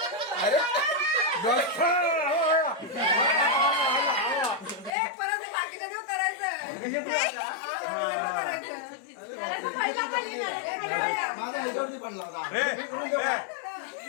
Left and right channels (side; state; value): right; drops out; at 4.9 s